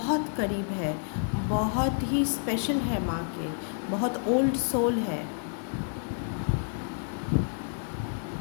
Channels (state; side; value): silent; right; digital silence